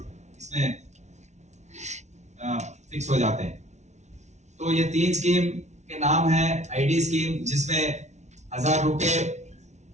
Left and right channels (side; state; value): left; late; 0.33 ms